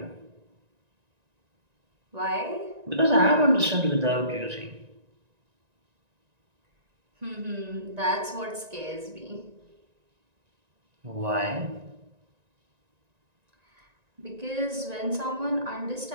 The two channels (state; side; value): late; left; 1.9 ms